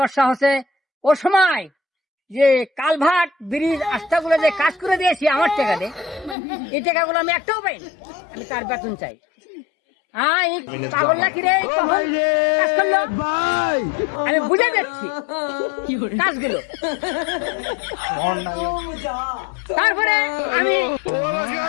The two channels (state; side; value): drops out; right; at 6.4 s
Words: হচ্ছে। ও সময় যে কালভার্ট ব্রিজ রাস্তাগুলো যে কাজ করে দিয়েছি আমার টাকা দিয়ে, এই টাকাগুলো আমি একটাও পাইনি। আমি তার বেতন চাই। পাগল নাকি রে? কাজ করলো, আমি বুঝে যাচ্ছি কাজগুলো। তারপরে আমি